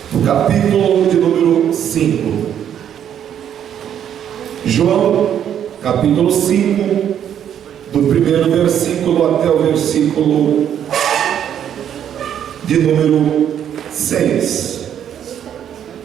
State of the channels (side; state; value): left; quieter; 9.5 dB